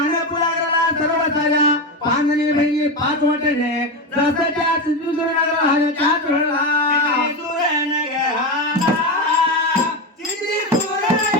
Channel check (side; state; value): both; normal; correlation 0.15